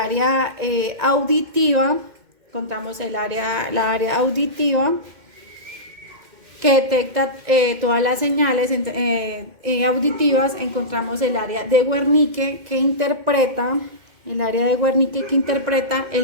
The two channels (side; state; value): left; late; 2.1 ms